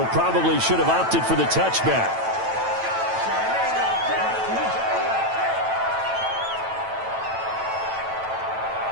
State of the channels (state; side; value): late; left; 9.0 ms